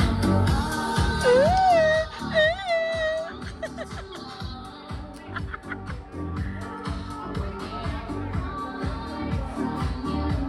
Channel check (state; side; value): identical; both; correlation 1.00